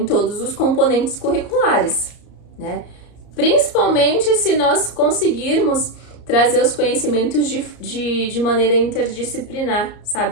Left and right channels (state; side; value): late; right; 33 ms